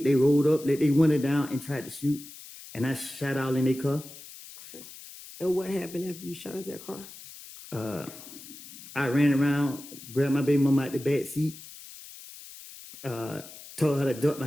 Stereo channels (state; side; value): noise; left; hiss, 16 dB below the sound